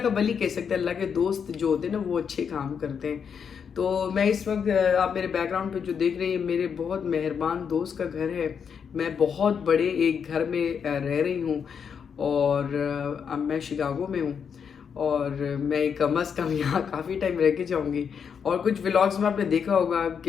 کا ولی کہہ سکتے ہیں، اللہ کے دوست جو ہوتے ہیں نا وہ اچھے کام کرتے ہیں. تو میں اس وقت آپ میرے بیک گراؤنڈ پہ جو دیکھ رہے ہیں میرے بہت مہربان دوست کا گھر ہے. میں بہت بڑے ایک گھر میں رہ رہی ہوں، اور اب میں شکاگو میں ہوں، اور میں کم از کم یہاں کافی ٹائم رہ کے جاؤں گی. اور کچھ ولاگز میں آپ نے دیکھا ہوگا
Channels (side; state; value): right; quieter; 6.9 dB